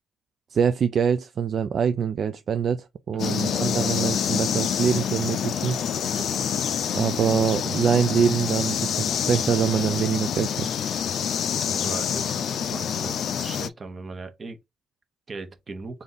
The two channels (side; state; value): both; normal; correlation 0.66